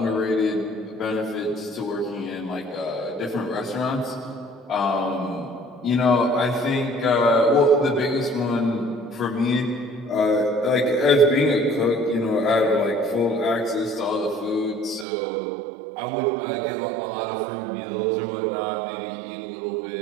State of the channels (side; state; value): left; drops out; at 15.1 s